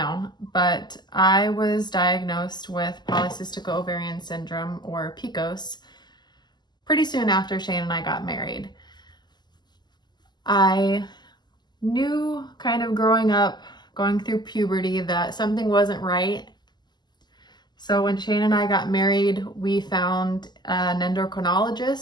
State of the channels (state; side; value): late; right; 0.21 ms